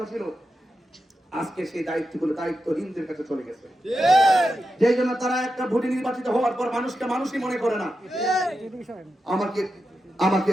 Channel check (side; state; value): both; normal; correlation 0.89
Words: ছিল, আজকে সেই দায়িত্বগুলো দায়িত্বহীনদের কাছে চলে গেছে। যেই জন্য তারা একটা ভোটে নির্বাচিত হওয়ার পর মানুষকে মানুষই মনে করে না।